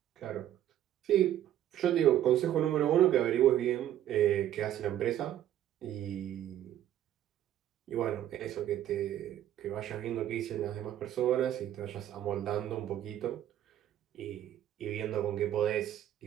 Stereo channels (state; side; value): quieter; left; 11.8 dB